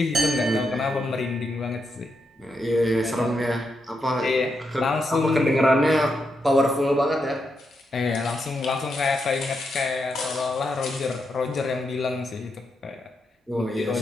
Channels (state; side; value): normal; both; correlation 0.83